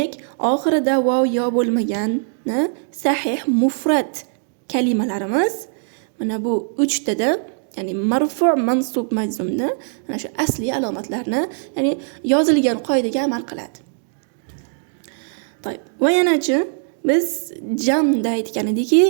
oxirida vav yo bo'lmagan sahih mufrad kalimalarimiz mana bu 3 tada, ya'ni marfu', mansub, majzumda mana shu asli alomatlarni, ya'ni yozilgan qoidaga amal qiladi. To'g'ri. Va yanachi biz jamda aytgan edikki,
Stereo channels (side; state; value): left; silent; digital silence